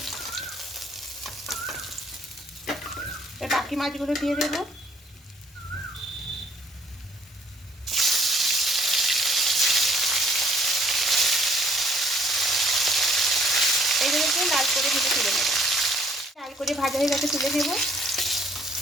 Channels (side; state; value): both; normal; correlation 0.61